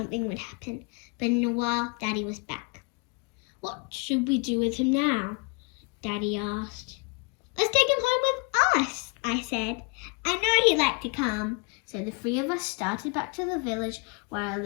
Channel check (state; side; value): quieter; right; 31.0 dB